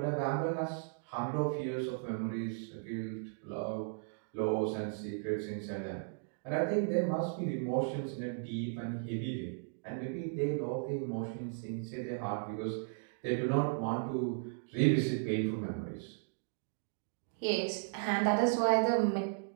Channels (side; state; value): left; silent; digital silence